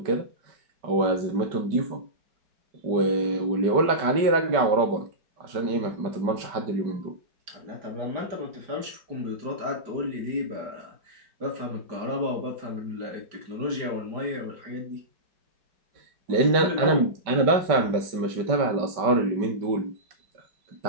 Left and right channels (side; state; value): left; late; 5.1 ms